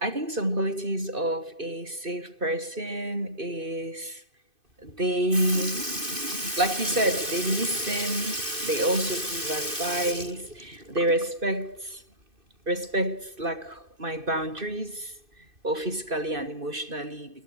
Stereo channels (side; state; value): left; late; 2.6 ms